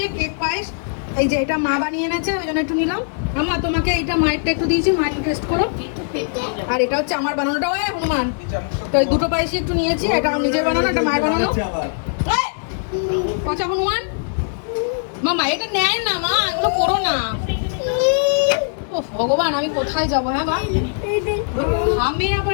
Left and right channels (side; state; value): right; silent; digital silence